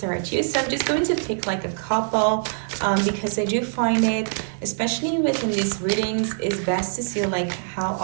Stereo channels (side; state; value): left; silent; 57 dB below the other